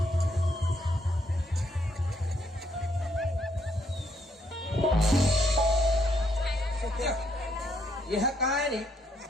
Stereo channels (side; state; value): both; normal; correlation 0.73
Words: यह कहा है रे